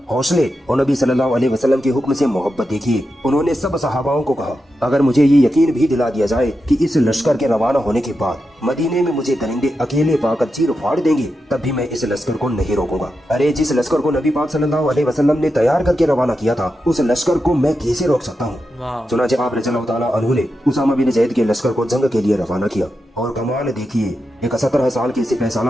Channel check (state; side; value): normal; both; correlation 0.88